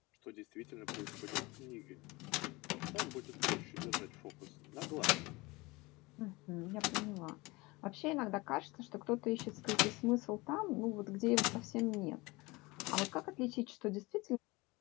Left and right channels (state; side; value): quieter; right; 23.3 dB